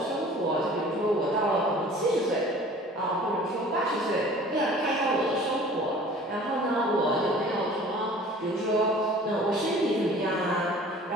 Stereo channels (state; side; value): normal; both; correlation 0.47